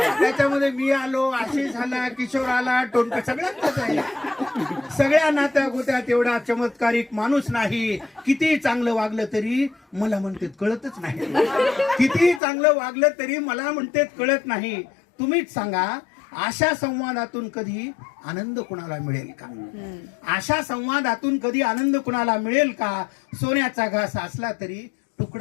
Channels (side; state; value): right; drops out; at 12.4 s